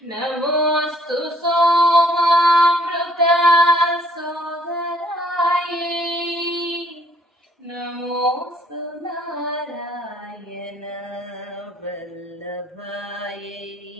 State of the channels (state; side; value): normal; both; correlation 0.62